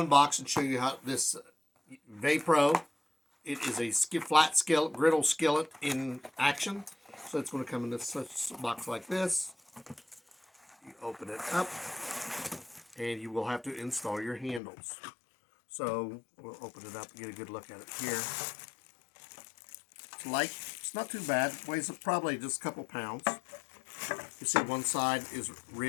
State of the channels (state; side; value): drops out; right; at 14.6 s